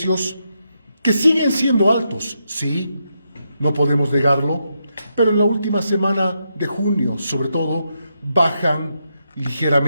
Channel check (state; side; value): inverted; both; correlation -0.83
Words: que siguen siendo altos, sí, no podemos negarlo, pero en la última semana de junio, sobre todo, bajan